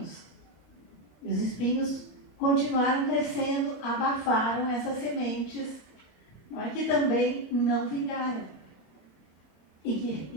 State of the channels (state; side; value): late; right; 26 ms